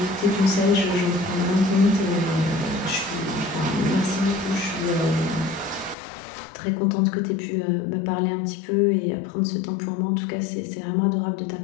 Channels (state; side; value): drops out; right; at 6.0 s